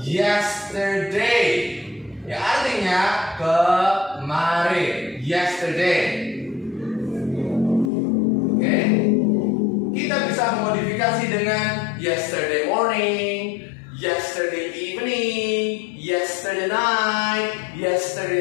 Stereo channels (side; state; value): right; drops out; at 7.9 s